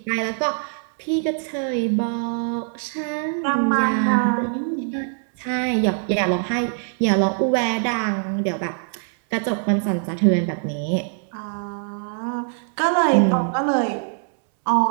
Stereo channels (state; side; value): silent; left; 63 dB below the other